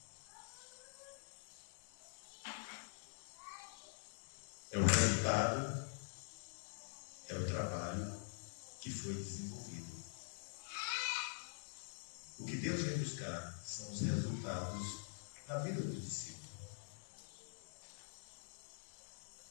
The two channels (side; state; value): right; silent; digital silence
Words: é o resultado, é o trabalho que foi desenvolvido. O que Deus vem buscar são os resultados na vida do discípulo.